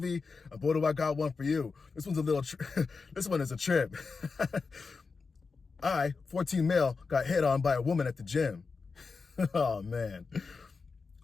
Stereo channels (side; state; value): right; quieter; 4.7 dB